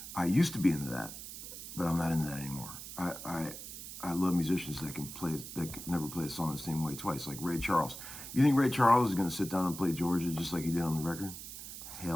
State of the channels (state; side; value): noise; right; hiss, 10 dB below the sound